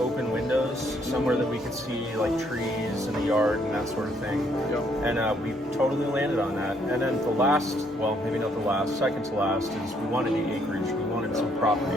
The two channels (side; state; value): both; normal; correlation 0.69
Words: windows, somewhere that we could see like trees in the yard and that sort of thing. Yep. And we totally landed on that. And then the last, well, maybe not the last, second to last is we wanted the acreage. We wanted some property.